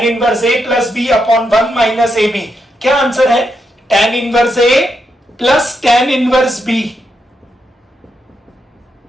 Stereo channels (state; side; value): normal; both; correlation 0.82